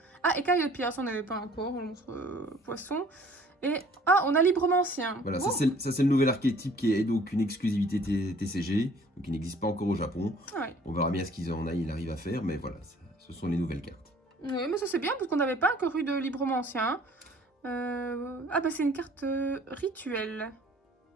Ah, écaille de pierre, ça on n'avait pas encore, le monstre poisson. Et on a libromancien. Voilà, Oh. ça c'est le nouvel archétype qui est donc une exclusivité TCG, donc qui n'existe pas encore au Japon. Ouais. On verra bien ce qu'il arrive à faire, mais voilà, ce sont les nouvelles cartes. Oui, mais ça c'est bien parce qu'on n'avait pas encore eu de libromancien. Ah bah c'est une carte rituelle.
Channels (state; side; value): normal; both; correlation 0.54